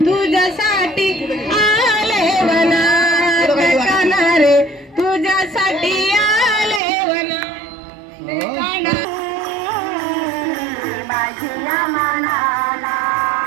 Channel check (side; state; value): left; drops out; at 6.8 s